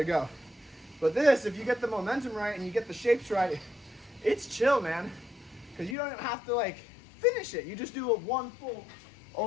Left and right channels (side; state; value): right; drops out; at 6.0 s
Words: go. But this, if you get the momentum right and you get the shapes right, it's chill, man. Because you don't have to like finish it. You just do a one full,